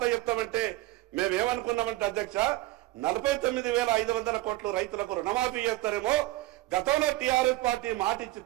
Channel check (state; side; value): quieter; left; 17.9 dB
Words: చెప్తామంటే మేమేమనుకున్నామంటే అధ్యక్ష 49,500 కోట్లు రైతులకు రుణమాఫీ చేస్తారేమో. గతంలో టిఆర్ఎస్ పార్టీ మాట ఇచ్చి